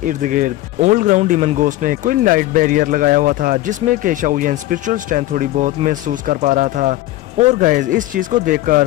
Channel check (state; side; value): quieter; right; 16.0 dB